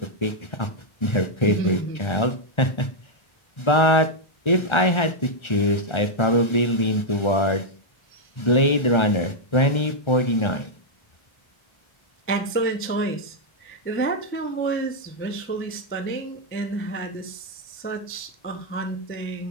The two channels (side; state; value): right; late; 1.3 ms